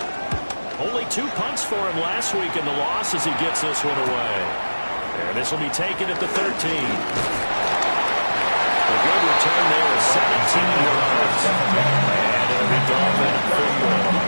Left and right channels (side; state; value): both; inverted; correlation -1.00